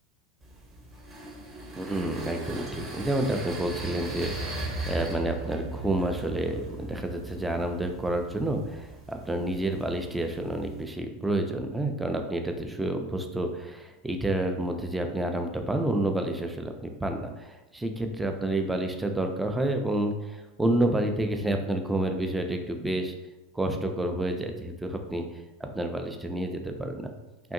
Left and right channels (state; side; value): normal; both; correlation 0.65